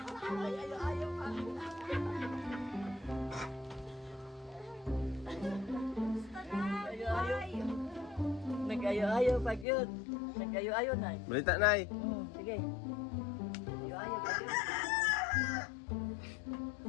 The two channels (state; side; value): drops out; right; at 9.7 s